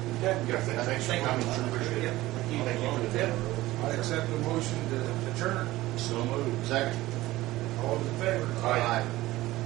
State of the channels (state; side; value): quieter; left; 17.4 dB